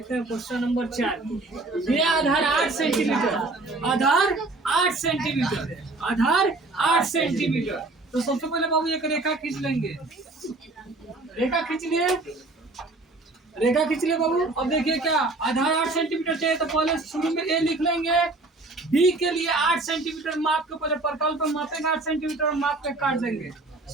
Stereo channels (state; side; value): quieter; left; 3.1 dB